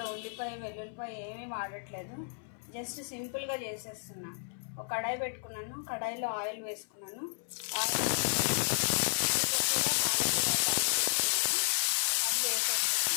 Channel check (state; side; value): silent; right; 56 dB below the other